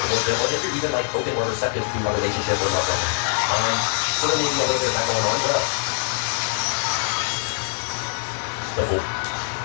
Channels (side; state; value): right; silent; digital silence